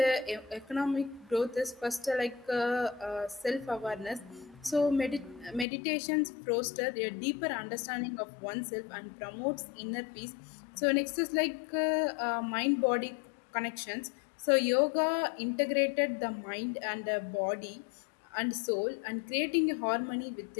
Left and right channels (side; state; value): right; drops out; at 5.7 s